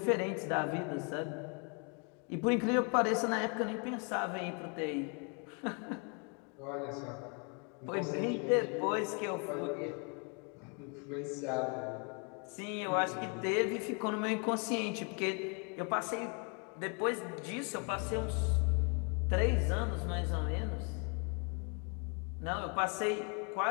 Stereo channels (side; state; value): right; quieter; 35.8 dB